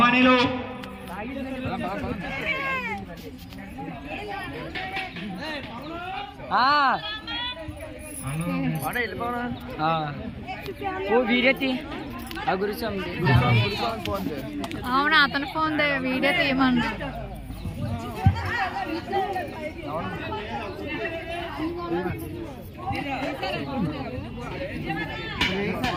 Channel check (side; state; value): both; identical; correlation 1.00